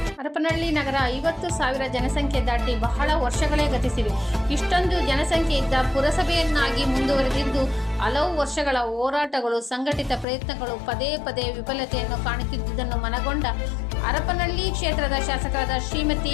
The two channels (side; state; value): right; drops out; at 10.2 s